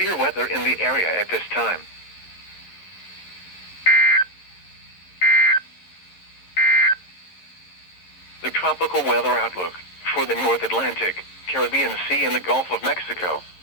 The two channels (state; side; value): late; right; 11 ms